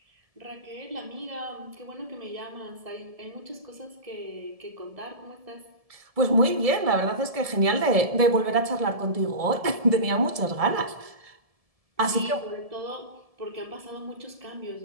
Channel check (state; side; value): late; left; 1.7 ms